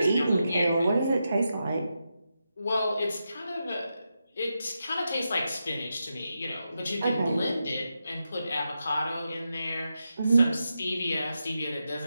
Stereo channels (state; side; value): inverted; both; correlation -0.87